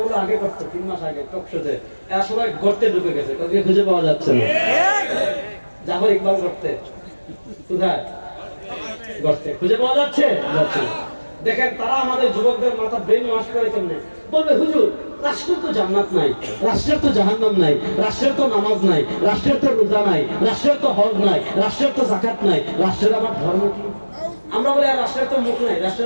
আগে করতো 3 মাস আগে টকশোতে, এরা সবাই গর্তে ঢুকে গেছে, কাউকে খুঁজে পাওয়া যাচ্ছে না। জাফর ইকবাল গর্তে, কোথায় গর্তে, খুঁজে পাওয়া যাচ্ছে? দেখেন তারা আমাদের যুবকদের মাথা ব্রেন ওয়াশ করে কেমনে বলবে, হুজুর রাষ্ট্রের তো জান্নাত নাই, রাষ্ট্রের তো জাহান্নাম নাই, রাষ্ট্রের তো নামাজ নাই, রাষ্ট্রের তো রোজা নাই, রাষ্ট্রের তো হজ নাই, রাষ্ট্রের তো যাকাত নাই, রাষ্ট্রের আবার ধর্ম কি? আমরা বলি আর রাষ্ট্রের তো মুখ নাই,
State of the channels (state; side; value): inverted; both; correlation -1.00